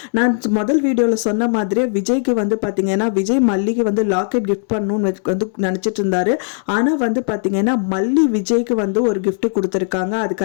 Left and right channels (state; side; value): silent; right; digital silence